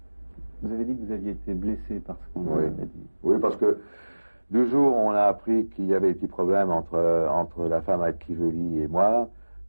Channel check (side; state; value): both; inverted; correlation -1.00